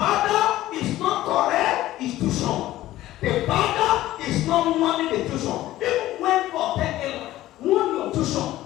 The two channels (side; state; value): right; quieter; 15.2 dB